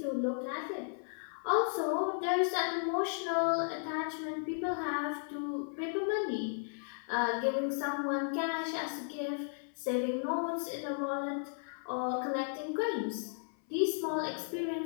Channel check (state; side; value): silent; right; 54 dB below the other